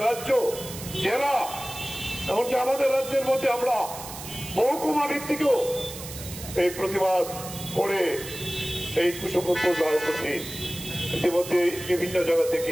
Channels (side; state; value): right; noise; hiss, 11 dB below the sound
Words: রাজ্য, জেলা, এমনকি আমাদের রাজ্যের মধ্যে আমরা মহকুমা ভিত্তিকেও এই প্রতিবাদ করে এই কুশপুত্র ধারণ করছি। ইতিমধ্যে বিভিন্ন জায়গা